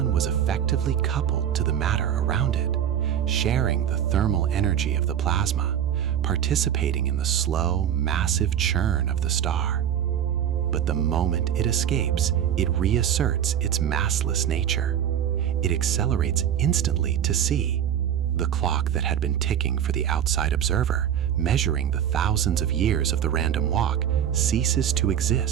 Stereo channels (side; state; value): left; quieter; 9.8 dB